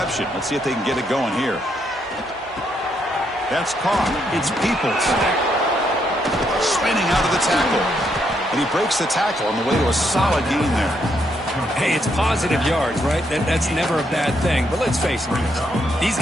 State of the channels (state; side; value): normal; both; correlation 0.76